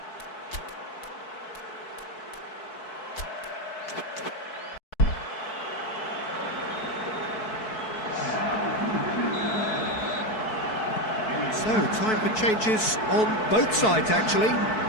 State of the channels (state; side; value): late; right; 4.6 ms